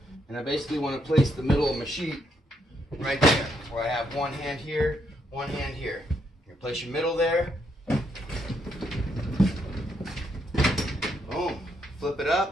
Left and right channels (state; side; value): normal; both; correlation 0.76